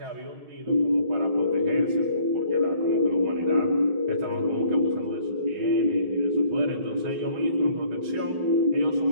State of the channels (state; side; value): late; left; 6.2 ms